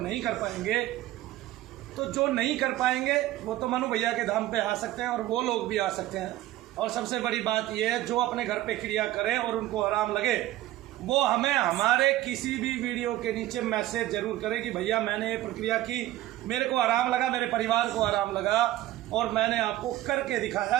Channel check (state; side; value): quieter; left; 15.5 dB